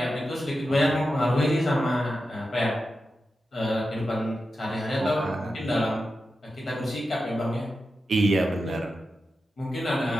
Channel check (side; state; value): both; normal; correlation 0.90